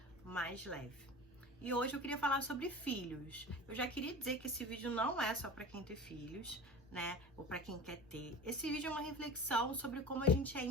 mais leve. E hoje eu queria falar sobre filhos. Eu já queria dizer que esse vídeo não é só para quem tem filhos, né? Ou para quem quer ter. Esse vídeo é uma reflexão sobre como a gente é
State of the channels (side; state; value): both; normal; correlation 0.35